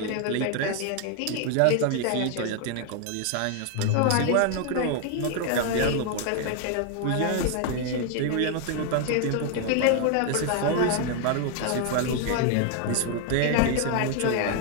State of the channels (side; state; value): both; different; correlation 0.00